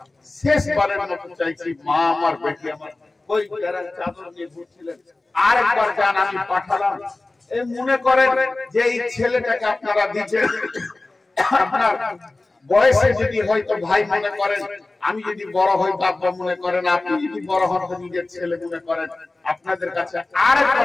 শেষবারের মতো চাইছি। মা আমার, বেটি আমার, ওই যারা চাদর নিয়ে ঘুরছিলেন আরেকবার যান, আমি পাঠালাম। এই মনে করেন যে এই ছেলেটাকে আপনারা দিচ্ছেন, আপনার বয়সে যদি হয়তো ভাই মনে করেন, আমি যদি বড় হই বাবা মনে করেন, আপনি যদি বড় হন নিজের ছেলে মনে করেন, আপনাদের কাছে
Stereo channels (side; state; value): right; quieter; 3.1 dB